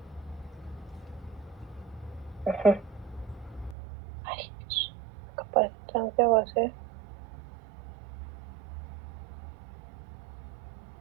Ay, Dios. La capacitancia va a ser...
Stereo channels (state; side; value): drops out; left; at 3.8 s